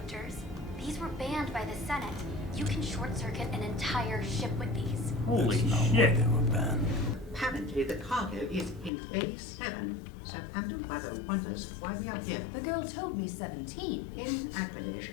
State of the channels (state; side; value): drops out; right; at 8.9 s